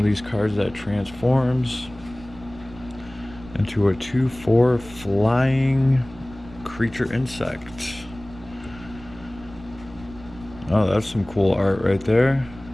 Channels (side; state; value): right; noise; rumble, 19 dB below the sound